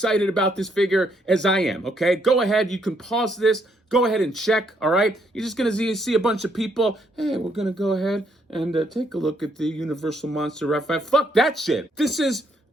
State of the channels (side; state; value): both; normal; correlation 0.72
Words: about this figure as I am, okay? Go ahead, you can pause this, go ahead and check, all right? You're just gonna see a bunch of people, hey, we're gonna go ahead and take a look at the Universal Monster Raphael. Fuck that shit. This is